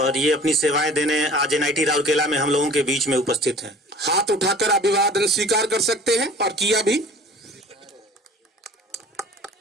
ये अपनी सेवाएं देने आज एनआईटी राउरकेला में हम लोगों के बीच में उपस्थित हैं। हाथ उठाकर अभिवादन स्वीकार कर सकते हैं और किया भी।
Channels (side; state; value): both; normal; correlation 0.46